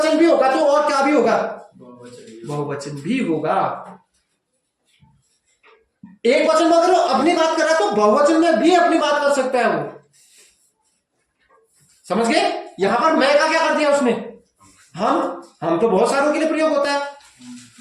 भी होगा तो और क्या भी होगा? बहुवचन भी होगा। एक वचन में अगर वो अपनी बात कर रहा है तो बहुवचन में भी अपनी बात कर सकता है वो। समझ गए? यहां पर मैं का क्या कर दिया उसने? हम तो बहुत सारों के लिए प्रयोग होता है।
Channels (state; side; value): identical; both; correlation 1.00